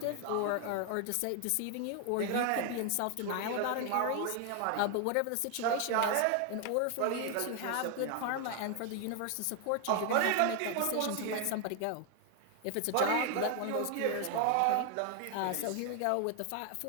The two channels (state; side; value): different; both; correlation 0.00